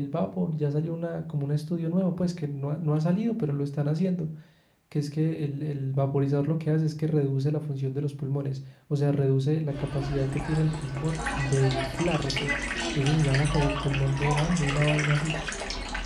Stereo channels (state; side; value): identical; both; correlation 1.00